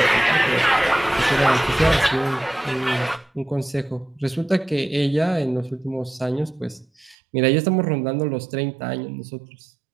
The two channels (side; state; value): left; drops out; at 7.2 s